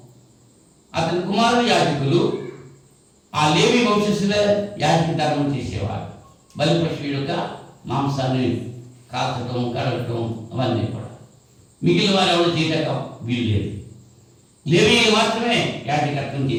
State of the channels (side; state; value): both; identical; correlation 1.00